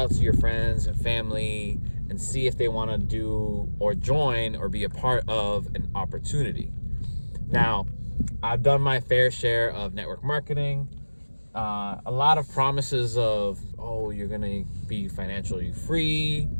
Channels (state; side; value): inverted; both; correlation -1.00